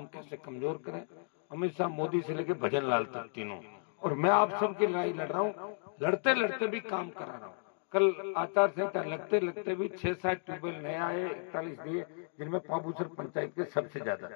कैसे कमजोर करें, अमित शाह, मोदी से लेके भजन लाल तक तीनों। और मैं आप सबकी लड़ाई लड़ रहा हूँ, लड़ते लड़ते भी काम करा रहा हूँ। कल आचार संहिता लगते लगते भी 6-7 ट्यूबवेल नए आए, 41 दिए, जिनमें पाबूसर पंचायत के सबसे ज्यादा,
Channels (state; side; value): silent; right; digital silence